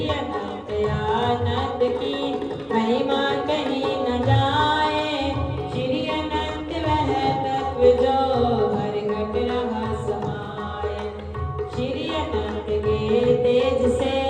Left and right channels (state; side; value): identical; both; correlation 1.00